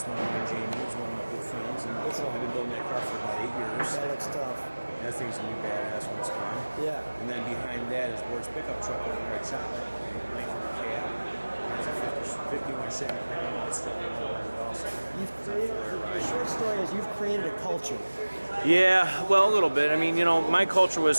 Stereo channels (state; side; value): inverted; both; correlation -1.00